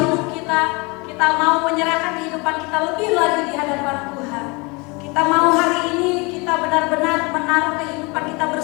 kita mau menyerahkan kehidupan kita lebih lagi di hadapan Tuhan. Kita mau hari ini kita benar-benar menaruh kehidupan kita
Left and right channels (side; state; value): right; quieter; 28.0 dB